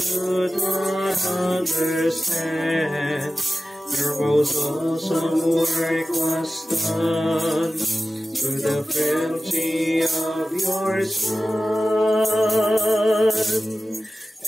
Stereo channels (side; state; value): both; normal; correlation 0.95